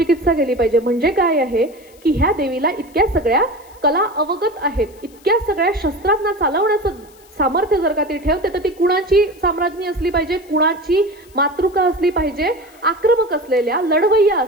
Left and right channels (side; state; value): left; noise; hiss, 27 dB below the sound